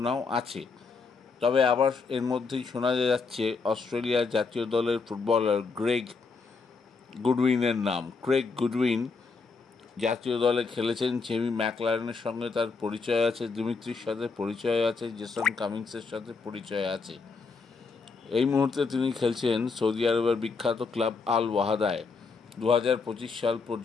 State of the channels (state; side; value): quieter; right; 4.6 dB